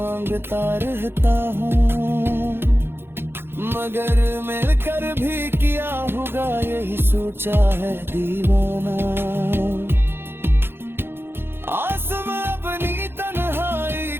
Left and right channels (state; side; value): late; left; 0.11 ms